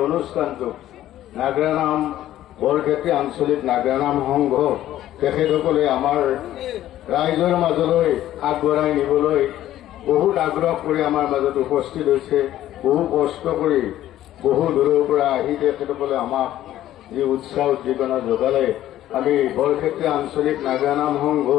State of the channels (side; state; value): right; quieter; 13.2 dB